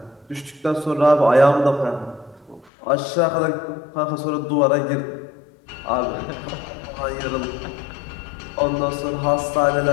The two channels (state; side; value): drops out; right; at 2.7 s